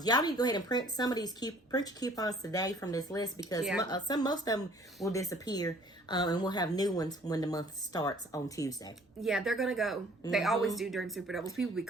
Y'all need to go ahead and print some of these print your coupons today from this list because most of them will disappear, and we'll have new ones when the month starts on Tuesday. Yeah, they're gonna go. They always do during Super Doubles. People be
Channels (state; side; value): normal; both; correlation 0.55